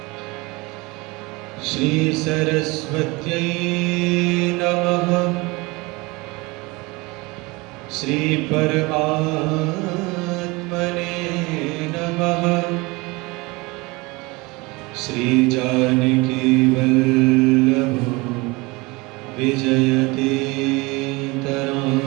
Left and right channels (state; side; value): quieter; left; 24.4 dB